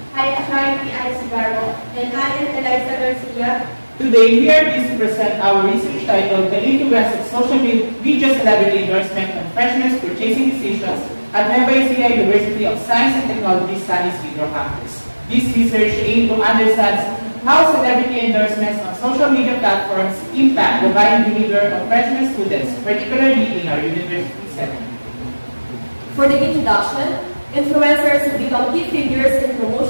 I am Charlie Alcibarro. And I am Eliza Garcia. Today, we are pleased to present our research titled The Influence of Social Media Celebrity Endorsement on Freshmen Purchasing Decisions at Nueva Ecija University of Science and Technology Studies Video Campus. This research aims to understand how celebrity endorsements on social media platforms impact the buying behavior of freshman students, particularly in our university setting. For the introduction, influencers have become key figures in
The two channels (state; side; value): inverted; both; correlation -1.00